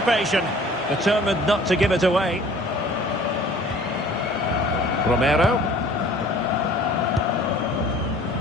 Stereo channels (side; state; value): both; normal; correlation 0.50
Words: Determined not to give it away. Romero.